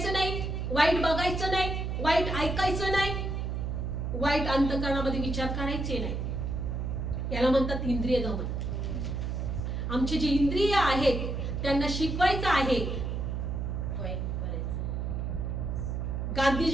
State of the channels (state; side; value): noise; right; hum, 2 dB below the sound